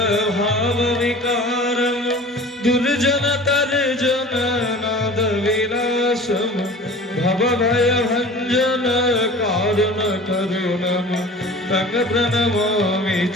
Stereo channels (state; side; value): normal; both; correlation 0.41